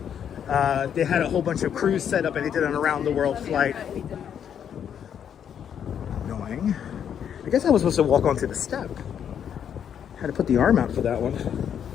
they had a whole bunch of crews set up and they did an around the world flight. Annoying. I guess I was supposed to walk onto the step. Had to put the arm out for that one.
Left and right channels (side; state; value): right; quieter; 8.6 dB